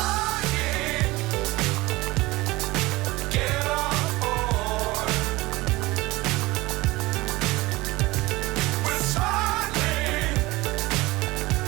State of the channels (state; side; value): quieter; left; 20.5 dB